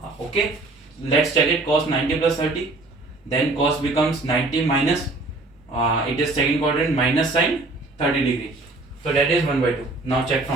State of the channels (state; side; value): quieter; left; 3.1 dB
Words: Okay, let's check it. Cos 90 plus 30, then cos becomes 90 minus it is second quadrant, minus sine 30 degree. So that is 1 by 2. Now check